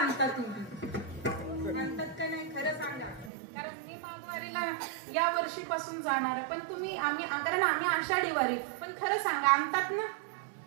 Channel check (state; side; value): drops out; left; at 3.3 s